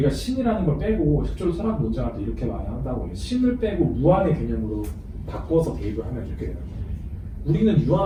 신이라는 걸 빼고 실제로 철학 논쟁할 때 이렇게 많이 한다고 해요. 신을 빼고 무한의 개념으로 바꿔서 대입을 하면 이렇게 되는 거예요. 우리는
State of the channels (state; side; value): identical; both; correlation 1.00